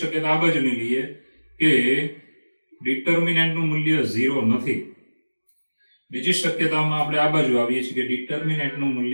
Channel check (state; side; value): inverted; both; correlation -1.00